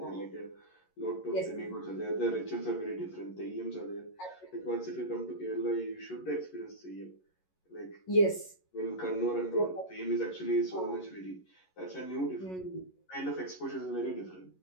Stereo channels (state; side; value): late; right; 11 ms